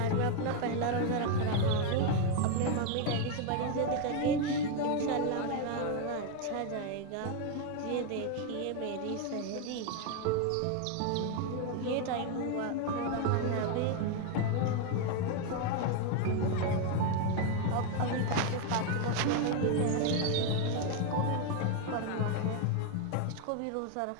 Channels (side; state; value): both; different; correlation 0.01